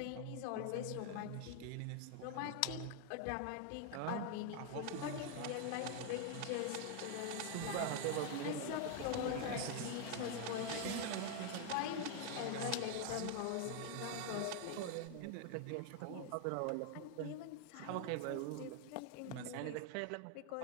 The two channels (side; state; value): both; different; correlation 0.01